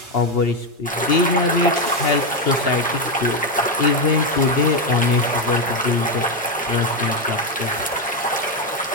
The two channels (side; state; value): both; normal; correlation 0.07